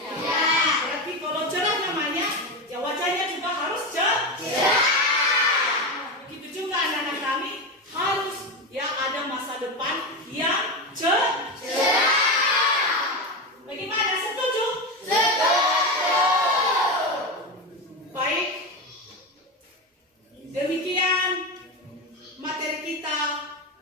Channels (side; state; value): both; normal; correlation 0.17